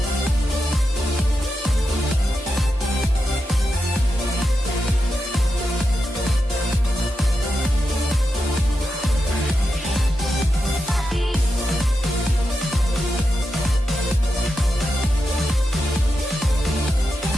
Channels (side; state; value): both; normal; correlation 0.88